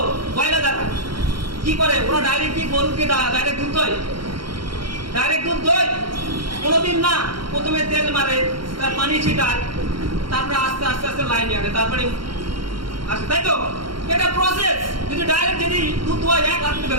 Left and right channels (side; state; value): left; late; 0.73 ms